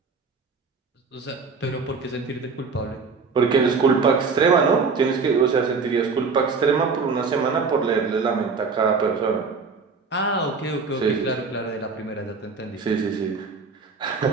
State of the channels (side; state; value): left; quieter; 4.8 dB